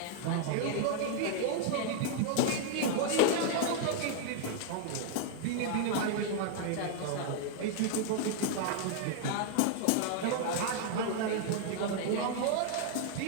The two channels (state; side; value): different; both; correlation 0.00